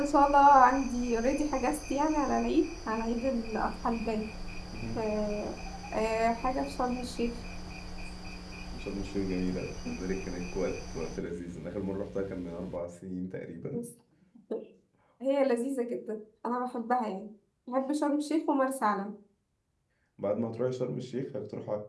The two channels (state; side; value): identical; both; correlation 1.00